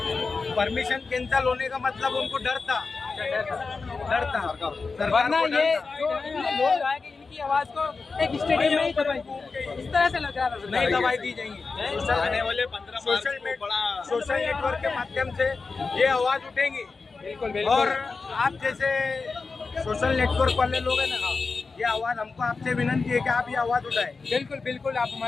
परमिशन कैंसिल होने का मतलब उनको डर था। सरकार वरना को ये डर था। जो इतने लोग आए कि इनकी आवाज को एक स्टेडियम में ही दबाई, इस तरह से लग रहा था। नहीं दवाई दी जाएंगी। आने वाले 15 मार्च को बड़ा सोशल नेटवर्क के माध्यम से ये आवाज उठेंगी। बिल्कुल और बिल्कुल। आप जैसे सोशल नेटवर्क वाले लोग हैं ना, ये आवाज हमको आपसे विनंती है कि आप ये आवाज उठाएं। बिल्कुल बिल्कुल, आप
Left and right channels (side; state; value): right; quieter; 4.4 dB